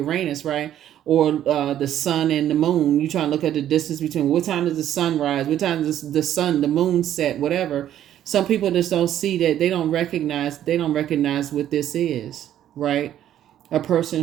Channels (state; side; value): quieter; left; 11.3 dB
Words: right? Or the sun and the moon. You trying to look at the distance between what time does the sun rise, what time does the moon set, whatever. Some people just don't see that. They don't recognize what this is, right? A